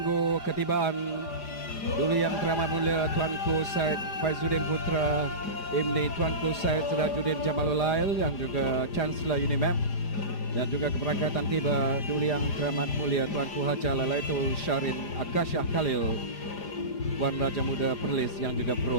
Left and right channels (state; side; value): late; right; 4.9 ms